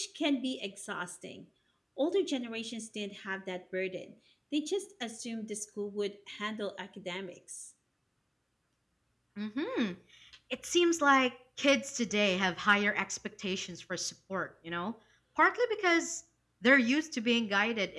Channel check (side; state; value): both; identical; correlation 1.00